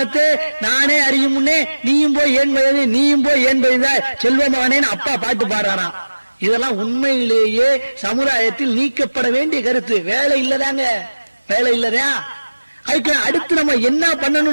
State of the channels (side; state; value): both; inverted; correlation -1.00